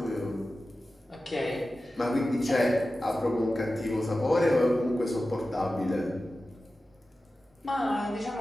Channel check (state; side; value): normal; both; correlation 0.94